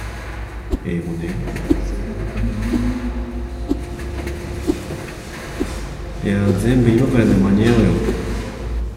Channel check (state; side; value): identical; both; correlation 1.00